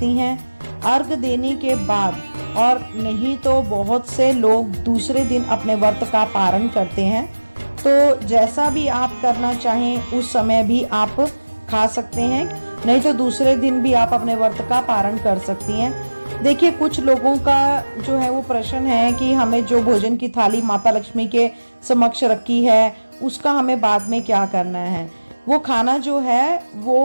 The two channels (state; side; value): inverted; both; correlation -1.00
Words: हैं अर्घ देने के बाद, और नहीं तो बहुत से लोग दूसरे दिन अपने व्रत का पारण करते हैं। तो जैसा भी आप करना चाहें उस समय भी आप खा सकते हैं, नहीं तो दूसरे दिन भी आप अपने व्रत का पारण कर सकती हैं। देखिए कुछ लोगों का जो है वो प्रश्न है कि हमें जो भोजन की थाली माता लक्ष्मी के समक्ष रखी है उसका हमें बाद में क्या करना है। वो खाना जो है